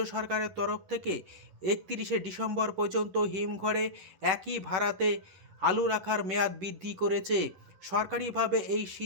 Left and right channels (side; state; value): left; late; 11 ms